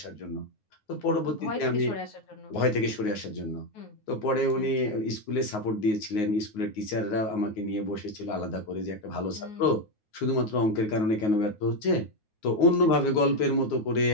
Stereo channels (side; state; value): right; late; 9.5 ms